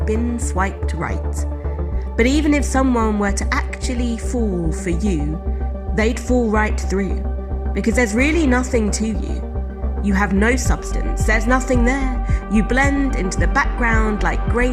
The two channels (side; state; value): both; identical; correlation 1.00